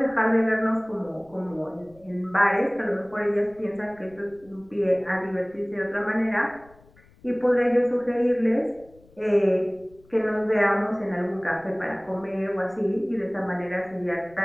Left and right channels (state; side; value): noise; left; rumble, 27 dB below the sound